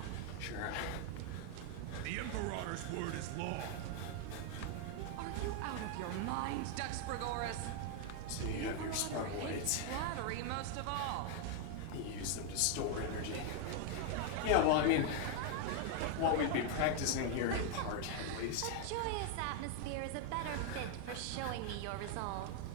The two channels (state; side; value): different; both; correlation 0.00